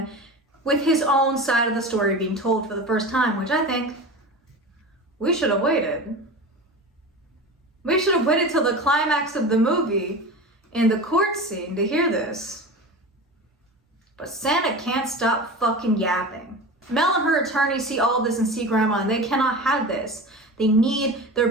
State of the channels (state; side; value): normal; both; correlation 0.30